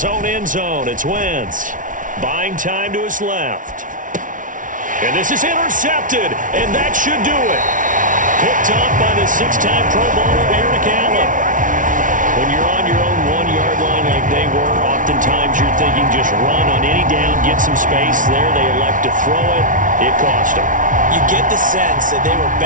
own end zone, it's Wentz. Buying time to his left. And this is intercepted, and that should do it. Picked up by the 6-time Pro Bowler Eric Allen. When you're on your own 1-yard line like they were, oftentimes you're thinking just run on any down, get some space. There they elect to throw it. It cost them. You get the sense that they were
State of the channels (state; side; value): late; left; 0.38 ms